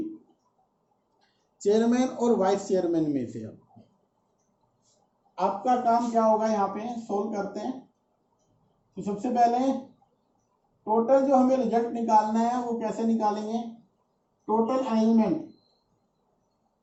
चेयरमैन और वाइस चेयरमैन में से आपका काम क्या होगा, यहाँ पे सोल्व करते हैं। तो सबसे पहले टोटल जो हमें रिजल्ट निकालना है वो कैसे निकालेंगे, टोटल अरेंजमेंट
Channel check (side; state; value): both; identical; correlation 1.00